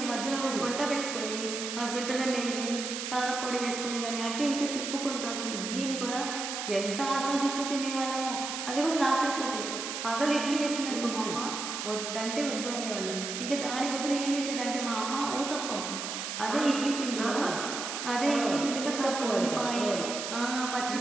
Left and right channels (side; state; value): right; noise; hiss, 5 dB below the sound